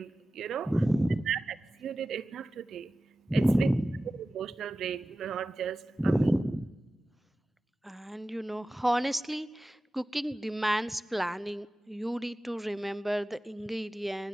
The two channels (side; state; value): both; normal; correlation 0.95